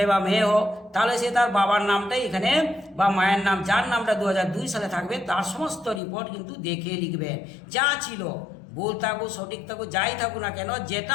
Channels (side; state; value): right; drops out; at 6.0 s